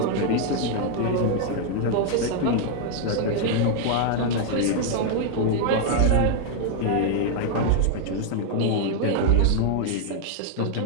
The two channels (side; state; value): both; different; correlation 0.00